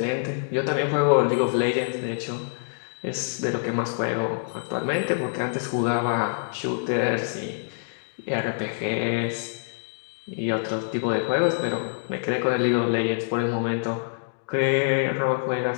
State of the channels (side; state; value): right; silent; digital silence